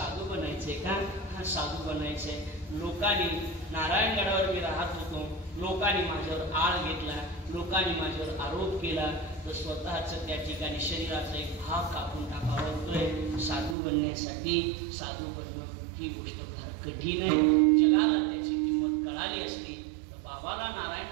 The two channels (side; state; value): left; drops out; at 13.8 s